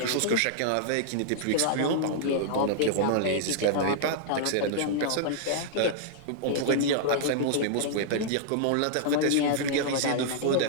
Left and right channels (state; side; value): different; both; correlation -0.01